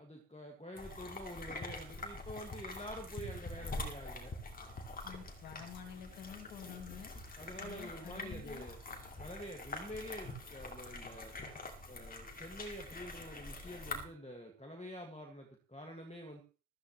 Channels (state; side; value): normal; both; correlation 0.36